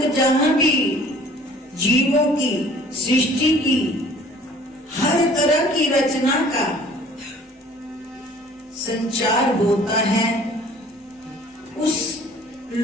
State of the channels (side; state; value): both; normal; correlation 0.51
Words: जहां भी जीवों की सृष्टि की हर तरह की रचना का संचार होता है, उस